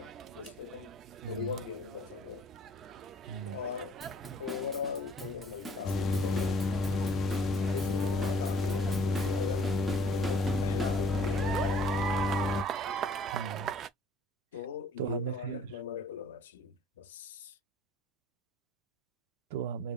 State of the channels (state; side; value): normal; both; correlation 0.56